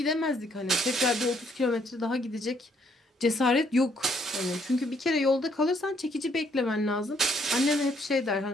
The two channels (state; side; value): normal; both; correlation 0.68